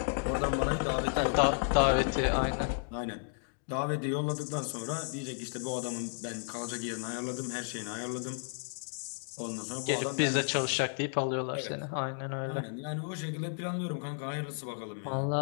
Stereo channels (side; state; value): right; silent; digital silence